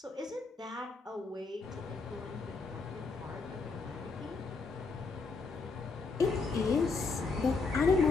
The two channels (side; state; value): right; quieter; 4.2 dB